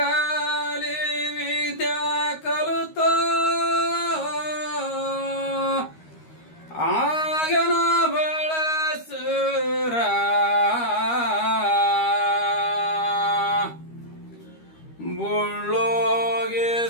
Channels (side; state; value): right; late; 13 ms